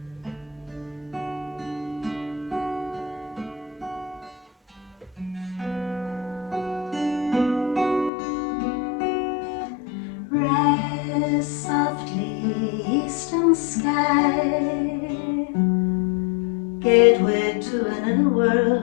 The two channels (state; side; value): drops out; right; at 8.1 s